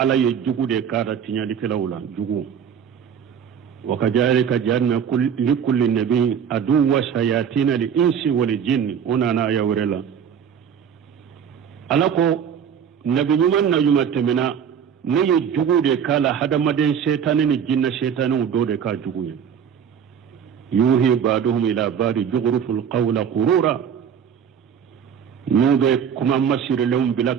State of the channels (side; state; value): left; quieter; 8.0 dB